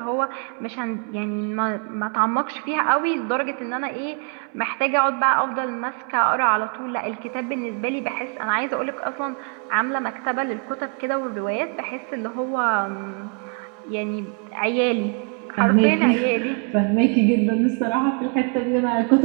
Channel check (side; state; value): left; quieter; 39.7 dB